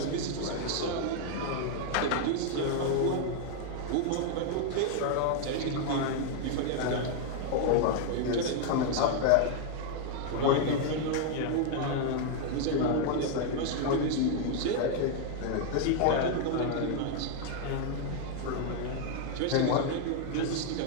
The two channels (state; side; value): different; both; correlation 0.00